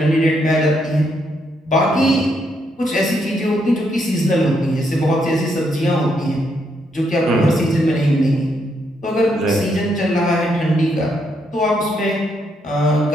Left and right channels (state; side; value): normal; both; correlation 0.76